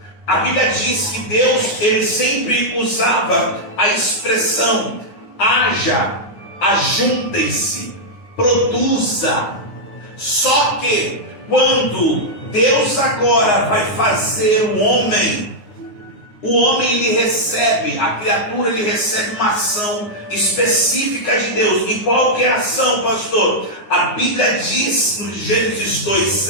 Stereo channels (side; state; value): right; late; 9.6 ms